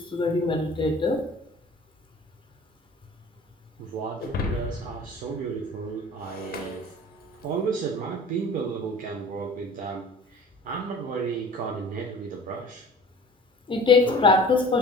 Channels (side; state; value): both; normal; correlation 0.44